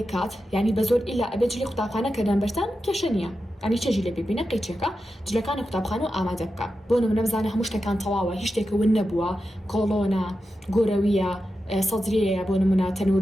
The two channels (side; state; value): both; normal; correlation 0.90